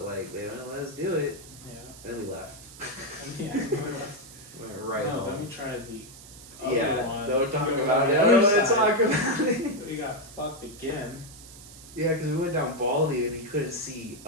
like they didn't let us do it. Yeah. And then we left. Yeah. Went right no, home. then we tried the other Yeah, one. don't talk We went about on it. the I other don't want to side. talk about it. We got fucked again. Yeah, because we went down Baldy and you couldn't see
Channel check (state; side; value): noise; right; hiss, 18 dB below the sound